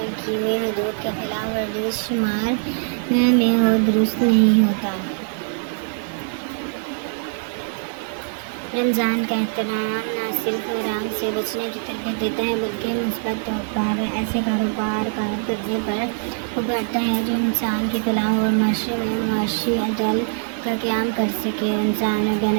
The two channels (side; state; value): left; silent; digital silence